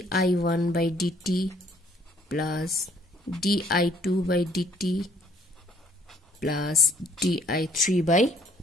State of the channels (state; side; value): normal; both; correlation 0.62